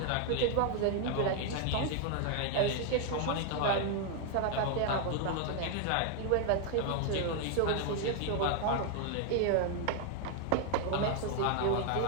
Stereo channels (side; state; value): both; different; correlation 0.00